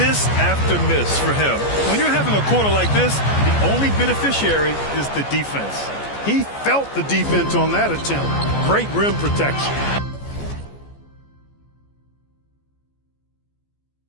after miss for him. When you're having a quarter like this, the only beneficiary is the defense. He felt the defense on that attempt. Great rim protection.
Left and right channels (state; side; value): late; right; 14 ms